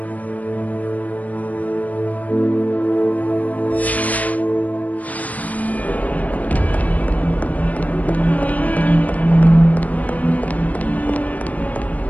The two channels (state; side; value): late; right; 0.073 ms